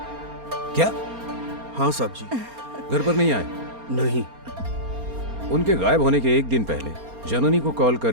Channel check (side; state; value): left; late; 4.3 ms